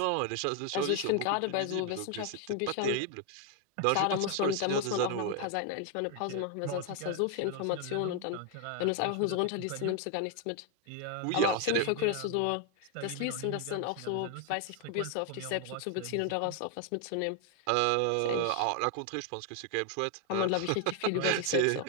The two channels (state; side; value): different; both; correlation 0.00